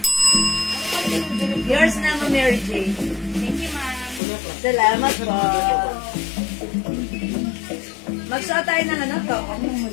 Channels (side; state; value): right; drops out; at 4.2 s